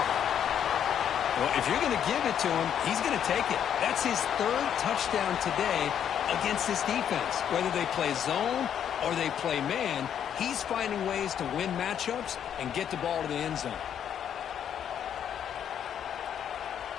Well, if you're going to give it to him, he's going to take it. That's his 3rd touchdown today against this defense. Whether they play zone or they play man, he's finding ways to win matchups and get the ball to the end zone.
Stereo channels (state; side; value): quieter; right; 9.1 dB